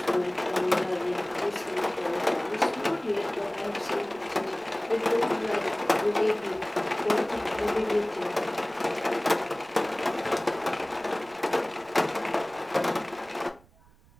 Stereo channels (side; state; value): right; noise; rumble, 28 dB below the sound